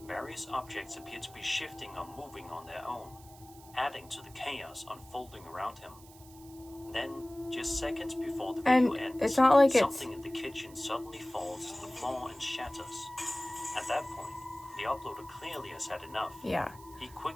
various objects appear to be shifting or moving on their own, adding to the chaos unfolding around him. Then, just seconds before the video ends, it's not like something in the kitchen suddenly falls to the floor and shatters. At that point, the uploader clearly has had enough. Yeah. He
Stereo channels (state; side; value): noise; right; hiss, 22 dB below the sound